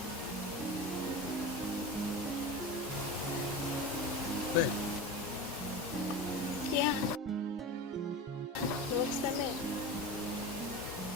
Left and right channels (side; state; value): both; normal; correlation 0.28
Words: Kweli? Yeah. Nimekusamehe.